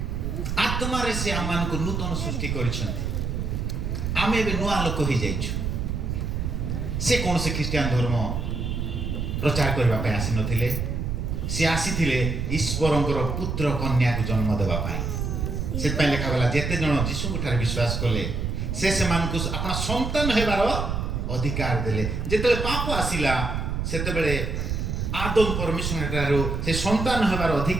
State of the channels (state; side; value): noise; right; rumble, 2 dB below the sound